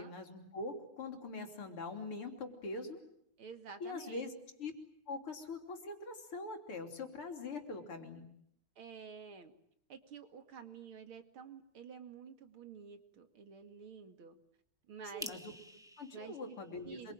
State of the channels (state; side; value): normal; both; correlation -0.14